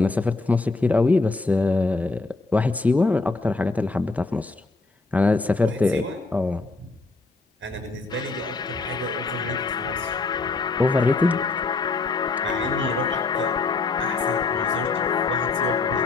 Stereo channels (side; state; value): right; quieter; 3.6 dB